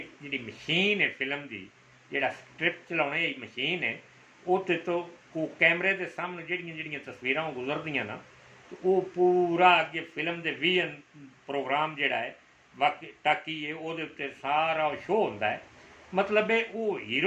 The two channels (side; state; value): both; identical; correlation 1.00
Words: जिहड़ी मशीन है फिल्म की, जिहड़ा स्क्रिप्ट चलाने की मशीन है, उत्ते तो वो कैमरे के सामने जिहड़ियां जिहड़ियां तस्वीरां गुजरदियां ना, तो वो पूरा अगे फिल्म के विजन प्रोग्राम जिहड़ा है बाकी टाकी है वो सारा शो होंदा है, मतलब है वो